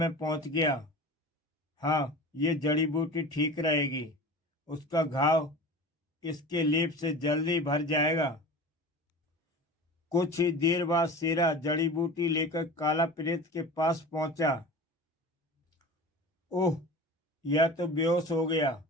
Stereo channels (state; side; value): normal; both; correlation 0.35